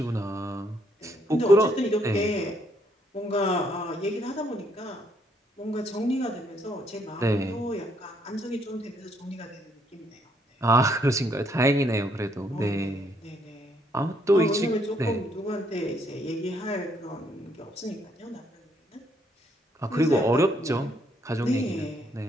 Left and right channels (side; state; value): both; normal; correlation 0.70